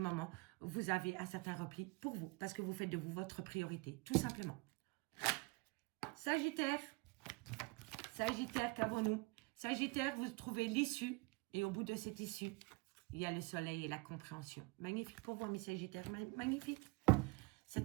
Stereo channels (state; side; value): quieter; left; 26.5 dB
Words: vous avez un certain repli pour vous. Parce que vous faites de vous votre priorité, tout simplement. Sagittaire. Sagittaire, qu'avons-nous? Sagittaire, vous trouvez l'issue. Et au bout de cette issue, il y a le soleil et la compréhension. Magnifique pour vous, mes Sagittaires. Magnifique. C'est